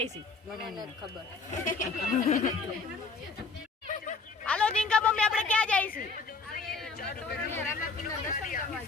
છે? ખબર. હાલો જીંકા મમ્મી, આપણે ક્યાં જાય છે?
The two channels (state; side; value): quieter; right; 4.3 dB